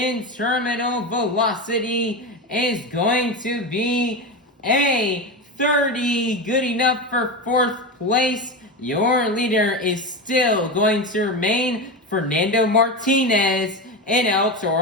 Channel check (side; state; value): both; normal; correlation 0.19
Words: Terminal Velocity is going to be a 30, good enough for fourth place. Your leader is still going to remain Fernando Martinez and El